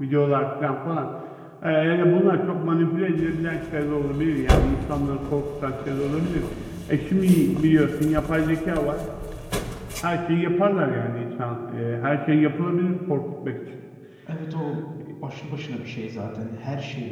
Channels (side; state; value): both; identical; correlation 1.00